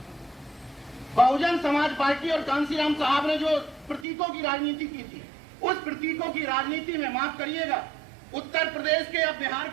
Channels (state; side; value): drops out; left; at 4.0 s